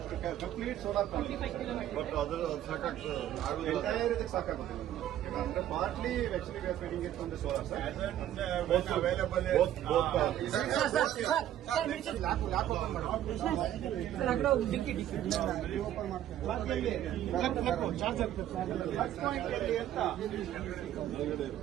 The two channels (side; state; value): left; quieter; 11.9 dB